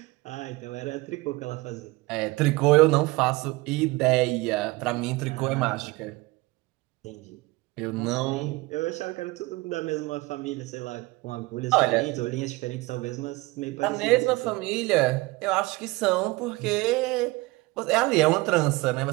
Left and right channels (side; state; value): left; quieter; 22.2 dB